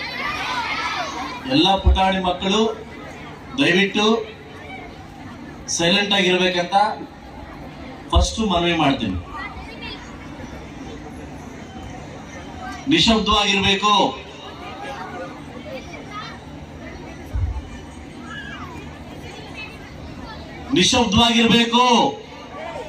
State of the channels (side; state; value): both; identical; correlation 1.00